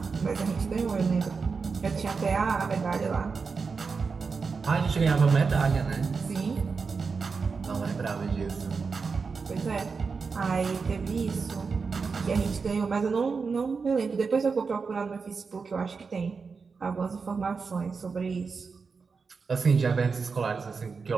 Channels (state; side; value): quieter; left; 5.0 dB